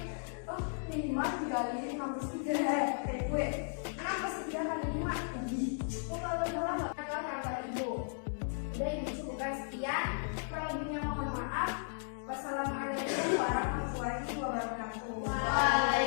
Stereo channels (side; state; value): right; silent; digital silence